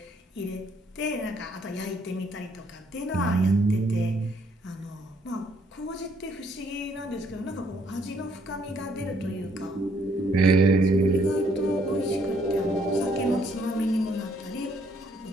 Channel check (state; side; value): normal; both; correlation 0.67